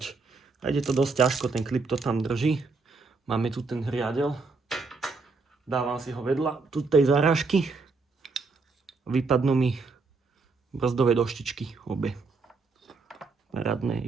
A ide to dosť ťažko, ten klip to tam drží. Máme tu ten riadel. Dávam si ho vedľa tu tej zarážky. Vypadnú mi brzdové doštičky obe. Parádne.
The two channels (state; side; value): quieter; left; 4.1 dB